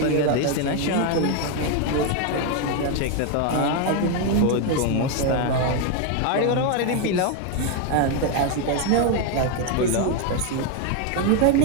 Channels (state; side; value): different; both; correlation 0.01